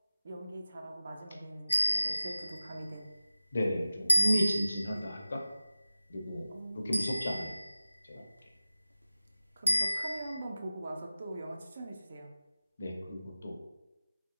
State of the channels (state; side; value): inverted; both; correlation -0.95